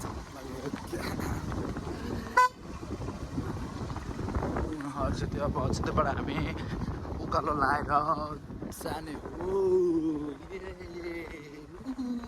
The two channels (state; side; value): identical; both; correlation 1.00